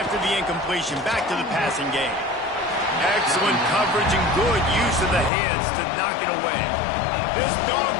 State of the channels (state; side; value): drops out; right; at 5.3 s